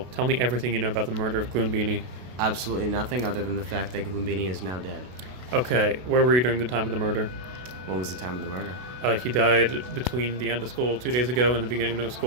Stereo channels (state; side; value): late; left; 32 ms